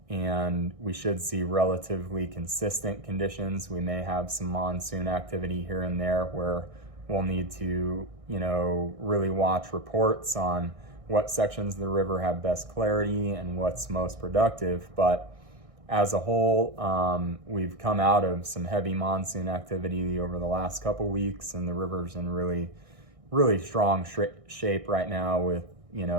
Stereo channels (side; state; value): left; late; 1.6 ms